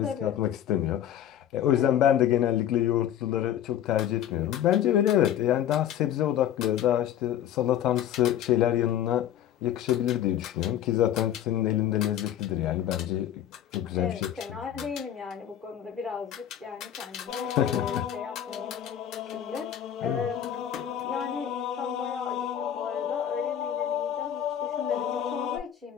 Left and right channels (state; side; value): quieter; right; 10.7 dB